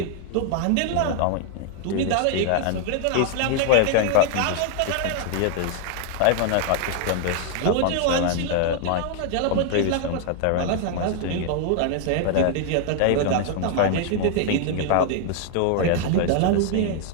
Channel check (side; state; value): both; different; correlation 0.00